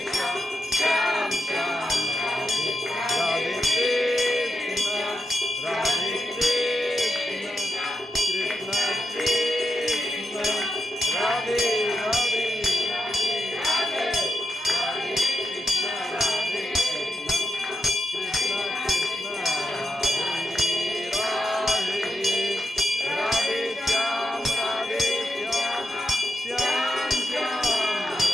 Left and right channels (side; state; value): both; normal; correlation 0.85